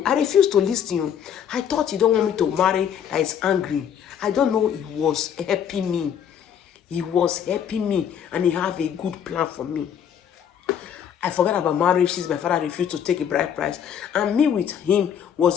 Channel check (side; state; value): right; quieter; 8.7 dB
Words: I refused to listen. I thought he don't want me to marry, that is angry. I don't know, he was helping me. He was helping me and he have a good plan for me. I forgot about marriage since my father refused to take a bride price. And me with him